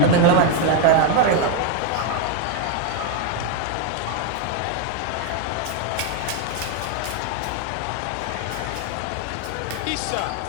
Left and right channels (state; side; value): different; both; correlation 0.01